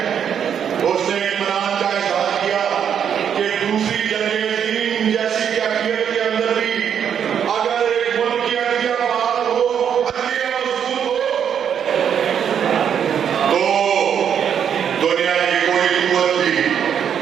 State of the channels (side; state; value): left; quieter; 8.3 dB